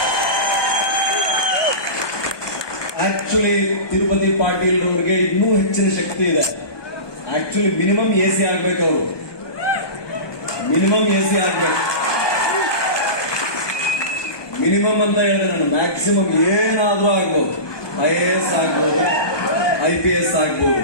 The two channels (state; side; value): late; right; 1.2 ms